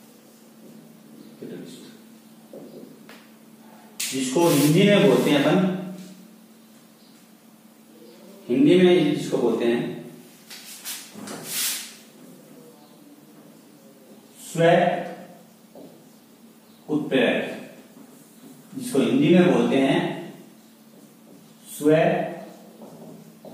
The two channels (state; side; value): identical; both; correlation 1.00